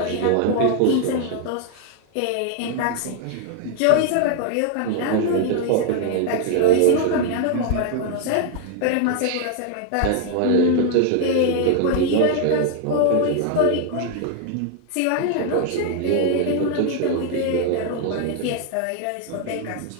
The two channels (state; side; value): different; both; correlation 0.00